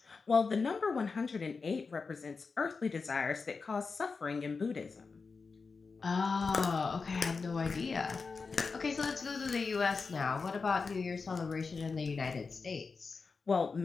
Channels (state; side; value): quieter; right; 4.7 dB